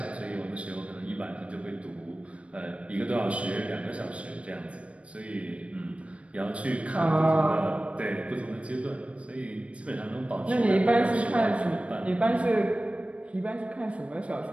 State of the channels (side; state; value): left; late; 0.062 ms